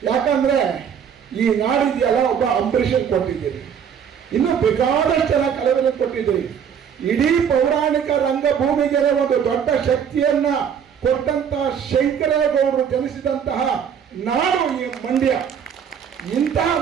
ಯಾಕಂದ್ರೆ ಈ ನಾಡಿದೆಯಲ್ಲ, ಒಬ್ಬ ಅಂಬರೀಷನ್ ಕೊಟ್ಟಿದ್ದೀರಿ, ಇನ್ನು ಬೇಕಾದಷ್ಟು ಜನ ಕಲಾವಿದರು ಕೊಟ್ಟಿದ್ದೀರಿ. ಇಡೀ ಪೌರಾಣಿಕ ರಂಗಭೂಮಿಗೆ ಒಂದು ದೊಡ್ಡ ಶಕ್ತಿಯನ್ನ ಕೊಟ್ಟಂತ ಶಂಕರೇಗೌಡರು ಜನಿಸಿದಂತಹ ನಾಡು ಈ ಮಂಡ್ಯ. ಇಂತಹ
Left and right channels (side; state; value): left; quieter; 7.8 dB